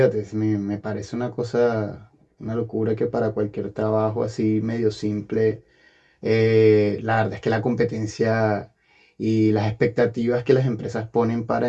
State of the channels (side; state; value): both; identical; correlation 1.00